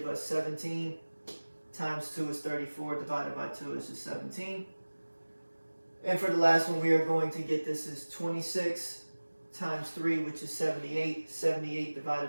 us 17 times 2 is 34, divided by 2 is just 17. And for the last one, we are going to get this is 26 times 3, which is 78. 78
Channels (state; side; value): inverted; both; correlation -1.00